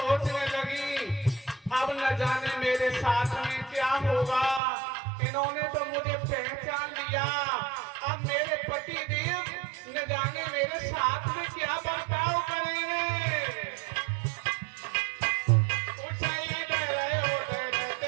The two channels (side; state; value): left; drops out; at 4.6 s